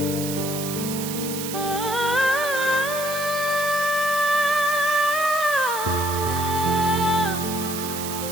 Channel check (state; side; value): noise; right; hiss, 7 dB below the sound